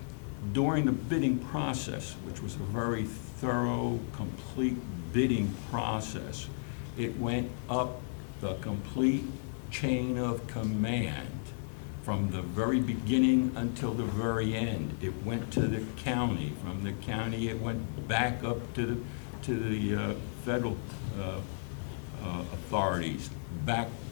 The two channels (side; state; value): right; silent; 55 dB below the other